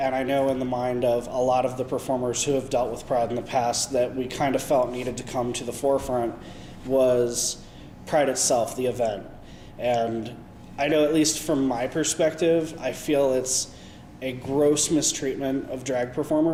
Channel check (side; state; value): both; identical; correlation 1.00